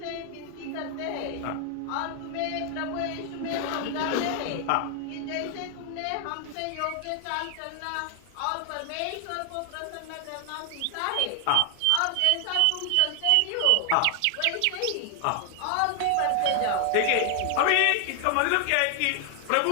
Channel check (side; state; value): both; different; correlation 0.00